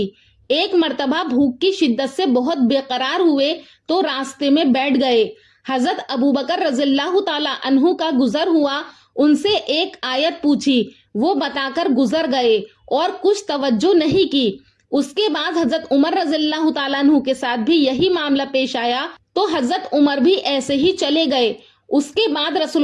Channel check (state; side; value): identical; both; correlation 1.00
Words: ایک مرتبہ بھوک کی شدت سے بہت بے قرار ہوئے تو راستے میں بیٹھ گئے۔ حضرت ابوبکر رضی اللہ تعالی عنہ کا گزر ہوا، ان سے ایک آیت پوچھی، وہ بتا کر گزر گئے اور کچھ توجہ نہیں کی۔ اس کے بعد حضرت عمر رضی اللہ تعالیٰ عنہ کے ساتھ بھی یہی معاملہ پیش آیا تو حضرت عمر بھی ایسے ہی چلے گئے۔ اس کے بعد